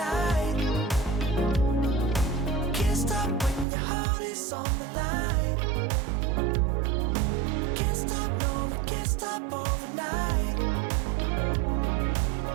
Can't stop when your heart is on the line. Can't stop, no, we can't stop overnight.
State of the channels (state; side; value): drops out; left; at 3.7 s